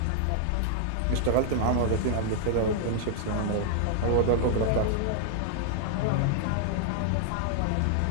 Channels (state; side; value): different; both; correlation -0.01